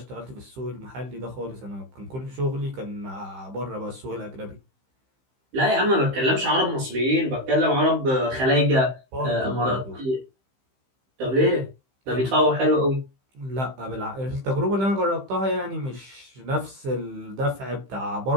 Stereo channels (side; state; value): left; late; 15 ms